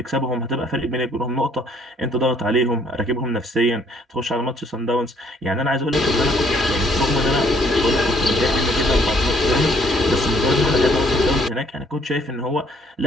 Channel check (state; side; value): normal; both; correlation 0.64